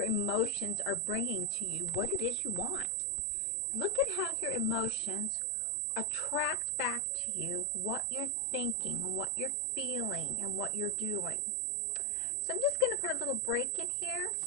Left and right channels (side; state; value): both; normal; correlation 0.01